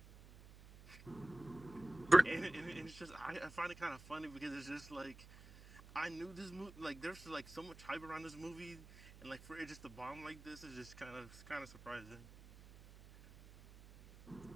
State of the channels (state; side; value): noise; right; hum, 18 dB below the sound